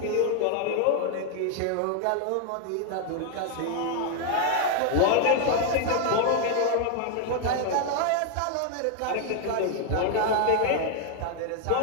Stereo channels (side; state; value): both; different; correlation 0.00